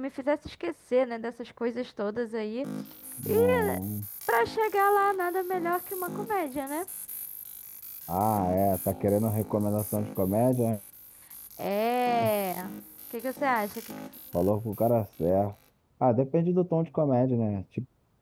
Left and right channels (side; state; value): both; identical; correlation 1.00